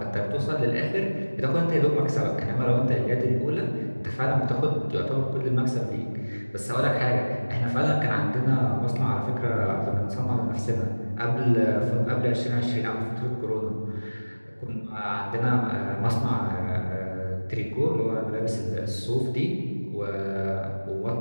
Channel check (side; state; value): both; inverted; correlation -1.00